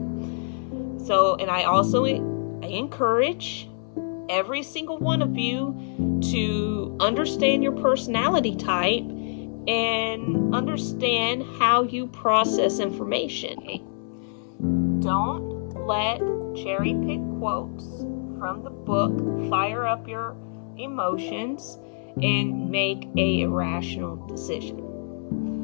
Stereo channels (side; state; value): right; silent; 61 dB below the other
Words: So, and I encourage every single one of you to understand your personality type and understand how you process information. Don't let cherry pick quotes from the book fire up your emotions and make a irrational decision.